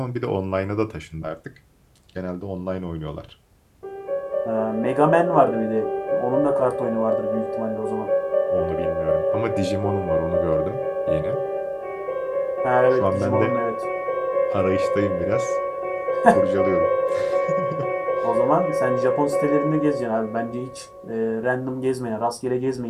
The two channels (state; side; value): identical; both; correlation 1.00